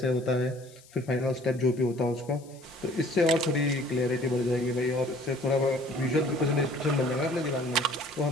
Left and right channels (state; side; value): noise; left; hiss, 25 dB below the sound